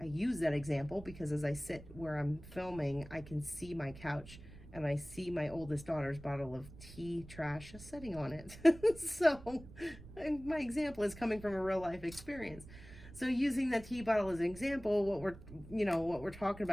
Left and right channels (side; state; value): right; noise; rumble, 17 dB below the sound